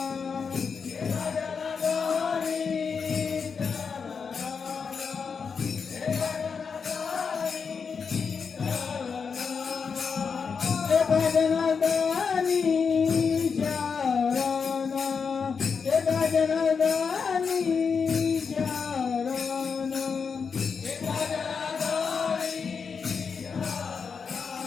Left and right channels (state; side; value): quieter; right; 5.8 dB